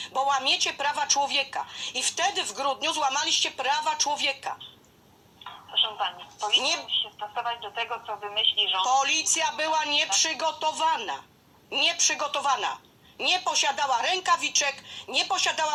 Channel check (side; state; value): both; identical; correlation 1.00